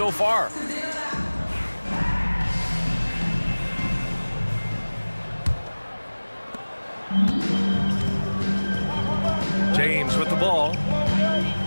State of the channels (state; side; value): inverted; both; correlation -1.00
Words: far. James with the ball.